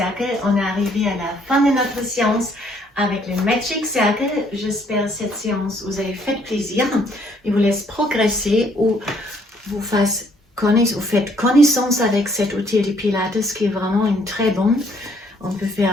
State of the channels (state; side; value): normal; both; correlation 0.66